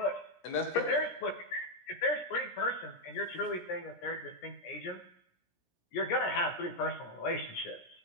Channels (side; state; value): right; late; 17 ms